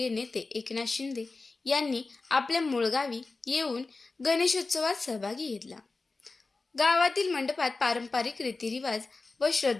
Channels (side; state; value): right; quieter; 3.7 dB